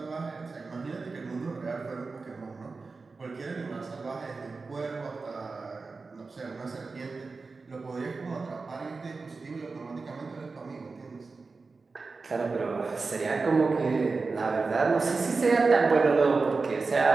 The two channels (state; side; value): quieter; left; 4.1 dB